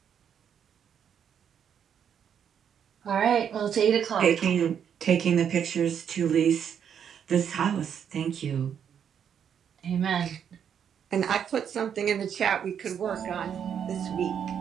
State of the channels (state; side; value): quieter; left; 8.2 dB